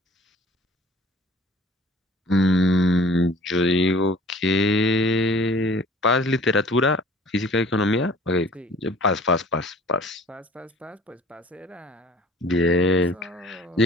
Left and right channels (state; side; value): normal; both; correlation 0.50